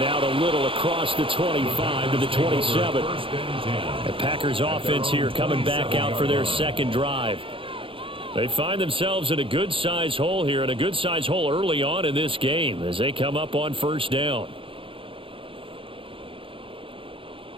out a little across the 25 to the 27. The Packers offense here coming back out for their 2nd drive. They find themselves in a good-sized hole here, and a good-sized hole early on in this game as they come up on 1st down.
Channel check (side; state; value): left; late; 0.26 ms